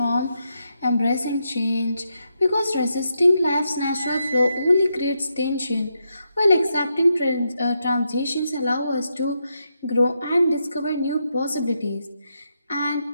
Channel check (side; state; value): both; inverted; correlation -0.83